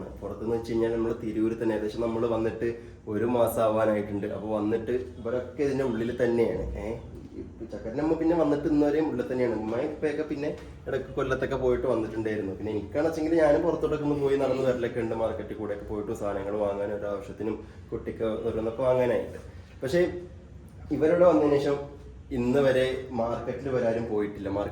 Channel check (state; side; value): identical; both; correlation 1.00